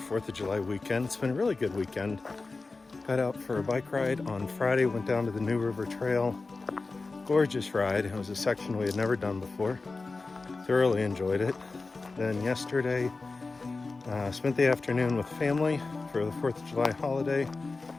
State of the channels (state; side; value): quieter; right; 3.8 dB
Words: of July weekend. It's been a really good weekend. Got out for a bike ride on Friday, went down to the New River Trail. Gorgeous ride. It was a section we had never done before. Thoroughly enjoyed it. Then yesterday, spent the afternoon with family for the 4th of July holiday.